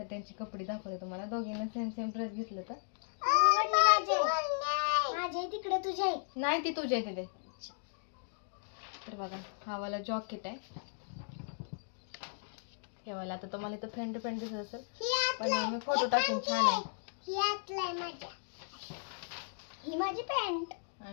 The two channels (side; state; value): right; silent; digital silence